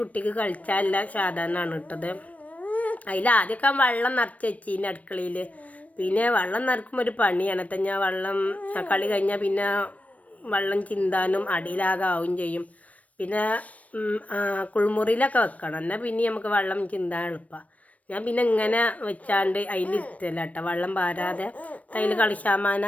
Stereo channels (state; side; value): late; right; 0.068 ms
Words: കളിച്ചാലുള്ള സാധനമാണ് ഇട്ടത്. അതിൽ ആദ്യമൊക്കെ വെള്ളം നിറച്ച് വെച്ചിന് അടുക്കളയിൽ. പിന്നെ വെള്ളം നിറക്കുമ്പോൾ ഒരു പണിയാണ്. ഞാൻ വെള്ളം കളി കഴിഞ്ഞാൽ പിന്നെ വെള്ളം ചിന്താനും അടിയിലാകെ ആവും ചെയ്യും. പിന്നെ കുളിമുറിയിലൊക്കെ വെക്കണം, എന്നാൽ പിന്നെ നമുക്ക് വെള്ളം ചിന്താൻ എളുപ്പമാണ്. ഞാൻ പിന്നെ ഇങ്ങനെ വെച്ചാണ്ട് അതിലിരുത്തല്ല കേട്ടോ, വെള്ളം പാരാതെ അതിൽ